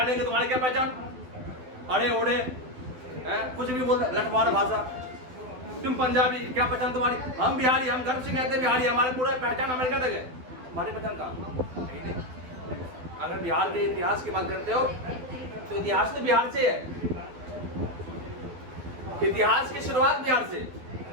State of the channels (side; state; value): left; late; 12 ms